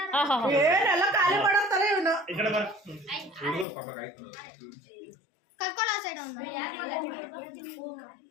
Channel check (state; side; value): drops out; right; at 3.7 s